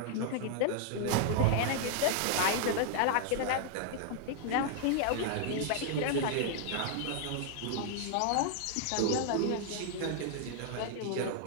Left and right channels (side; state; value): both; different; correlation 0.00